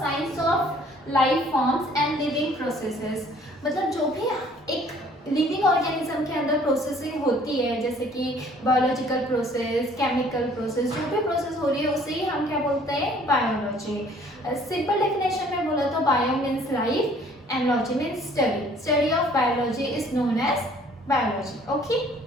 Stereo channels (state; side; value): normal; both; correlation 0.57